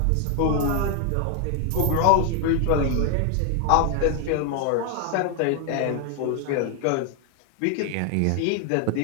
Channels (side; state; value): both; different; correlation 0.00